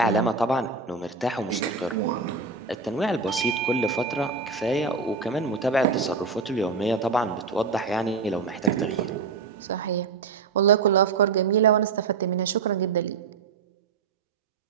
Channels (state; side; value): quieter; left; 4.8 dB